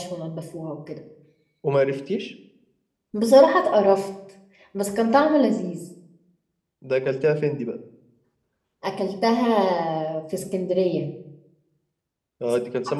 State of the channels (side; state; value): both; identical; correlation 1.00